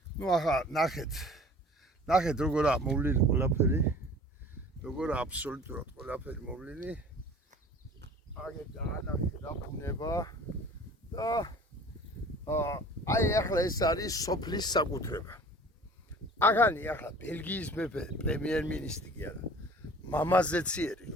ახლა ნახეთ როგორა მოვლილი ყველაფერი. როგორა აბსოლუტურად ყველაფერი მოვლილი. აგერ დაანახე რა ბუნება და აი ახლა ეს არის სოფლის საკუთრება. აღანი ახლა ბელგიის მეფე პრემიერ-მინისტრი კი არა. მამაზეციერი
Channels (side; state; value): both; normal; correlation 0.46